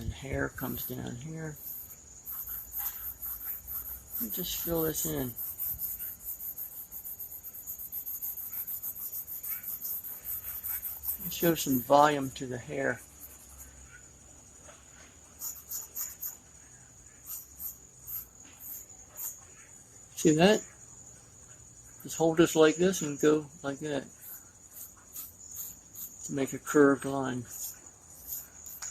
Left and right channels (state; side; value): identical; both; correlation 1.00